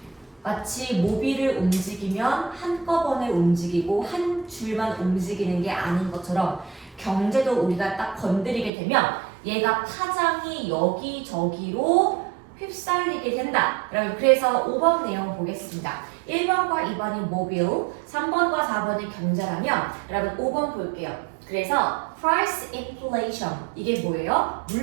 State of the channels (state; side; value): drops out; left; at 8.7 s